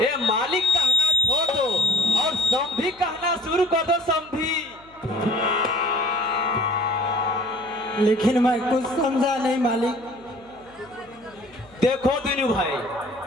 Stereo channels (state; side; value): noise; left; hum, 28 dB below the sound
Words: ये मालिक कहना छोड़ दो और समधी कहना शुरू कर दो। समधी। लेकिन मैं कुछ समझा नहीं मालिक। देखो दिनू भाई,